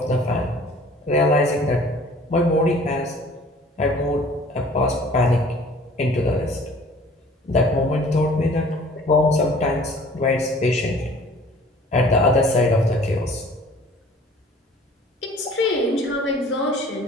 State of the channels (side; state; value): both; normal; correlation 0.51